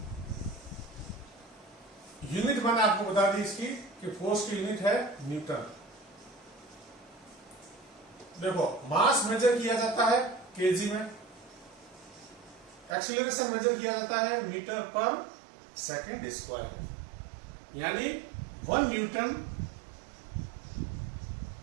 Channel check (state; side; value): drops out; left; at 13.0 s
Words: यूनिट मैंने आपको बता दी इसकी कि फोर्स की यूनिट है न्यूटन। देखो मास मेजर किया जाता है केजी में, एक्सीलरेशन मेजर किया जाता है मीटर पर सेकेंड स्क्वायर, यानी 1 न्यूटन